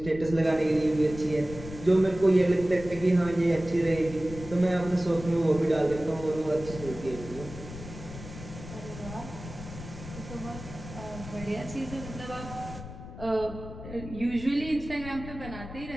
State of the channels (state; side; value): noise; left; rumble, 12 dB below the sound